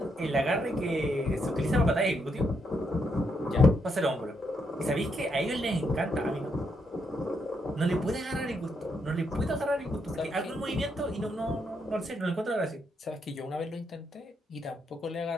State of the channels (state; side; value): normal; both; correlation 0.78